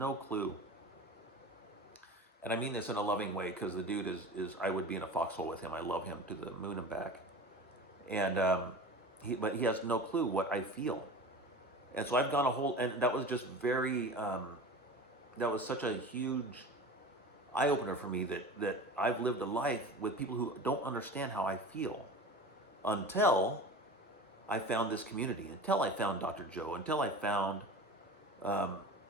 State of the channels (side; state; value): both; normal; correlation 0.34